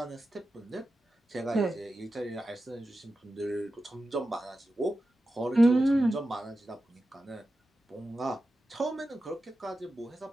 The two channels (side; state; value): both; normal; correlation 0.92